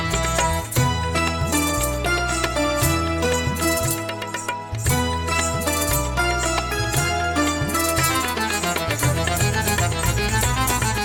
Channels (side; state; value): both; identical; correlation 1.00